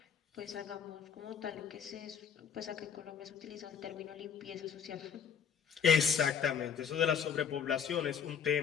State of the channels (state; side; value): quieter; right; 7.4 dB